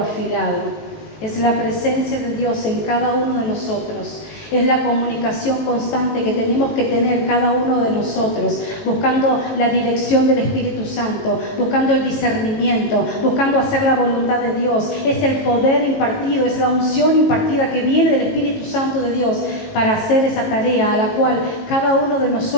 Es la presencia de Dios en cada uno de nosotros. Es la comunicación constante que tenemos que tener cada uno de nosotros, buscando la dirección del Espíritu Santo, buscando el discernimiento, buscando hacer la voluntad de Dios. Es el poder impartido, es la unción impartida que viene del Espíritu Santo de Dios para hacer esa tarea a la cual cada uno de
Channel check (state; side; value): late; right; 18 ms